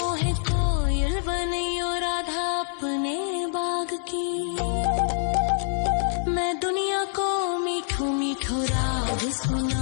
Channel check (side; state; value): right; silent; digital silence